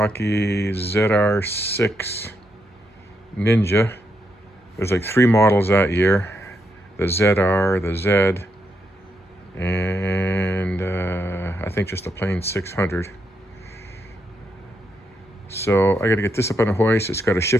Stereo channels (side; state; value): both; normal; correlation 0.81